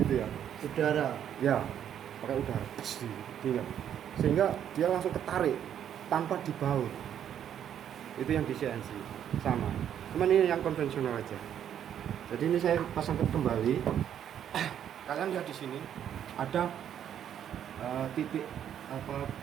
ya. Udara. Ya, pakai udara. Gitu. Sehingga dia langsung ketarik tanpa dibaut. Itu yang di CNC sama. Cuman ini yang konvensional aja. Jadi ini saya pasangkan kembali. Kalian lihat di sini ada titik apa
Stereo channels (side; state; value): left; quieter; 9.6 dB